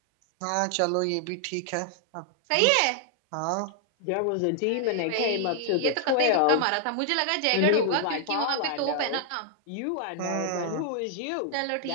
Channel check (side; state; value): both; different; correlation 0.00